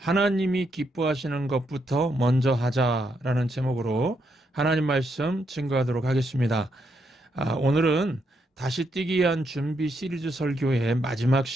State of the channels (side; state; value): both; normal; correlation 0.78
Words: 기뻐하시는 것부터 먼저 하자라는 제목으로 하나님 말씀 증거하도록 하겠습니다. 오늘은 다시 뛰기 위한 준비 시리즈 설교의 마지막